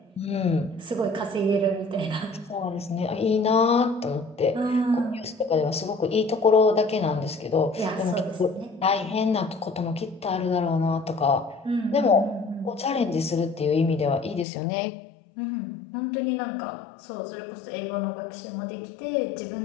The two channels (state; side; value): drops out; right; at 14.5 s